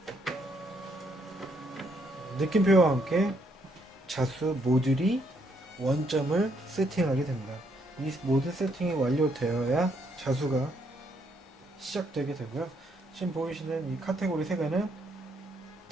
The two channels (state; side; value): normal; both; correlation 0.72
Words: 느낌표와 함께 자수 모듈이 원점을 세팅하게 됩니다. 이 모든 세팅이 완료되어야 자수가 시작되게 되고요. 지금 보이시는 이 카테고리 3개는